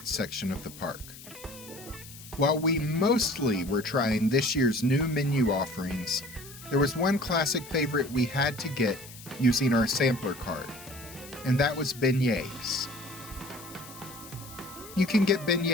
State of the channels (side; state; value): left; noise; hiss, 17 dB below the sound